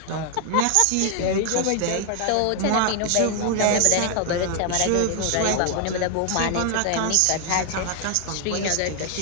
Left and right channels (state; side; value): different; both; correlation 0.00